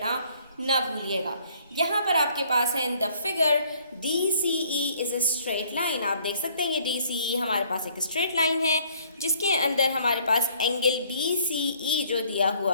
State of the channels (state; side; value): inverted; both; correlation -0.61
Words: ना भूलिएगा। यहाँ पर आपके पास है in the figure DCE is a straight line. आप देख सकते हैं ये DCE हमारे पास एक स्ट्रेट लाइन है, जिसके अंदर हमारे पास एंगल DCE जो दिया